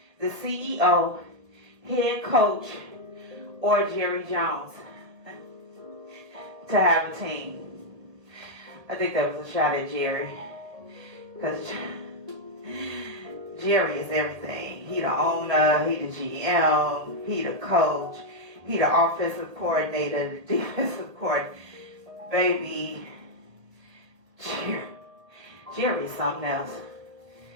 the CEO, head coach, or Jerry Jones to have a team. I think that was a shot at Jerry, because Jerry is everything. He the owner, he the GM, he the coach, he the offensive coordinator, the defensive coordinator. Baby, Jerry is something else,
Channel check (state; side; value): late; left; 1.8 ms